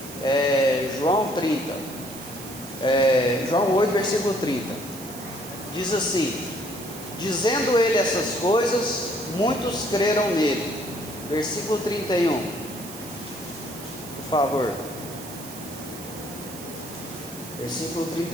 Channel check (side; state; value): right; noise; hiss, 14 dB below the sound